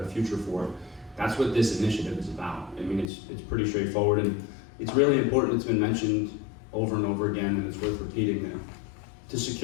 future for. That's what this initiative is about. I mean, it's pretty straightforward, and it's really important. It's been mentioned over and over again, and it's worth repeating that. To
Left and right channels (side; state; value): right; drops out; at 3.1 s